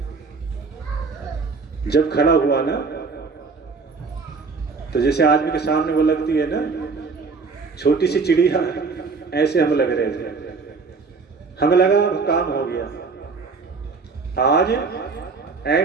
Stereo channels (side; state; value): left; quieter; 4.6 dB